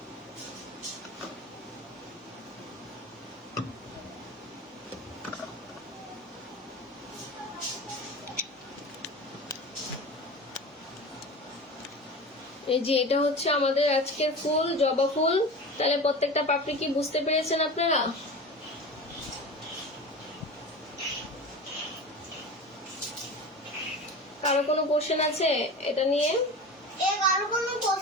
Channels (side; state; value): both; normal; correlation 0.32